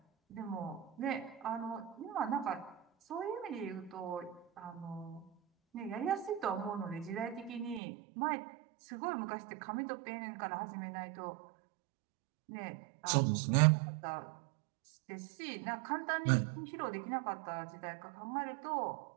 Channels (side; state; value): left; drops out; at 7.8 s